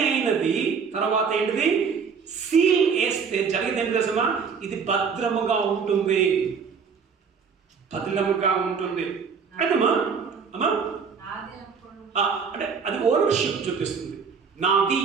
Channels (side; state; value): left; quieter; 5.9 dB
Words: అయినది. తర్వాత ఏంటిది? సీల్ వేస్తే జరిగేది ఏంటి తెలుసా? ఇది భద్రముగా ఉంటుంది, భద్రముగా ఉంటుంది. అదమ్మా అమ్మా అంటే అది ఓనర్షిప్ చూపిస్తుంది, నాది